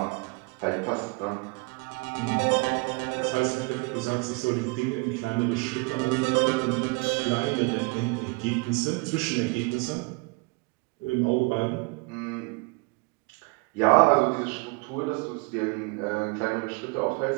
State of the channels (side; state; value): left; quieter; 29.0 dB